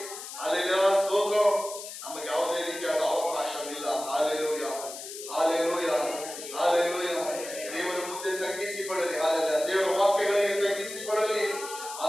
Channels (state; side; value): noise; left; hiss, 10 dB below the sound